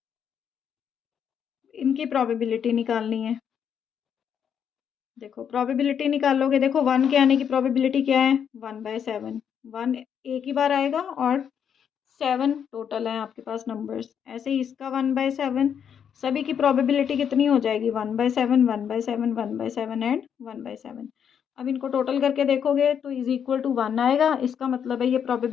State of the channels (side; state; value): right; quieter; 8.1 dB